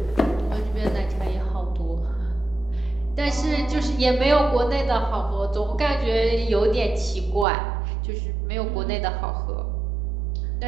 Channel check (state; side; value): drops out; left; at 7.5 s